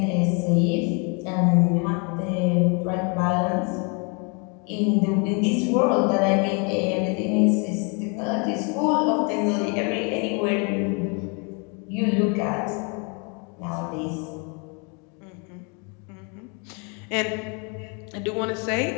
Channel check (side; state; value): right; quieter; 34.6 dB